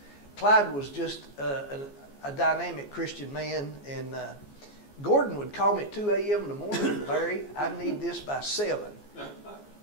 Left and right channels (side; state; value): right; late; 14 ms